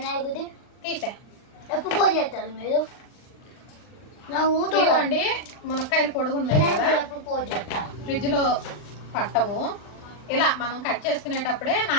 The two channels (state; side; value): late; right; 39 ms